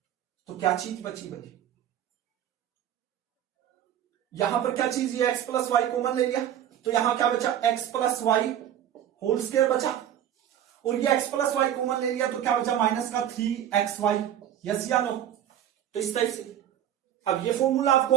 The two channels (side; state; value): left; quieter; 10.7 dB